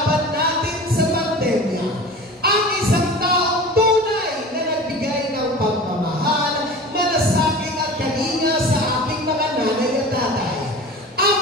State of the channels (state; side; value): normal; both; correlation 0.36